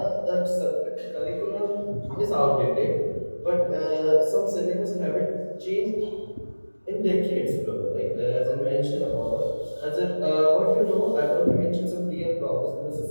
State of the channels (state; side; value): inverted; both; correlation -1.00